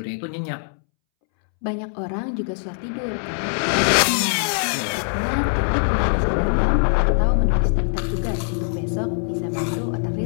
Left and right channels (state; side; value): silent; right; 64 dB below the other